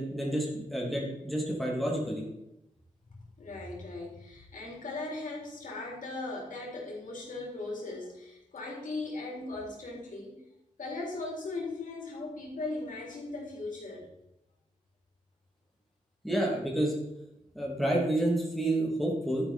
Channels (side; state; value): both; normal; correlation 0.76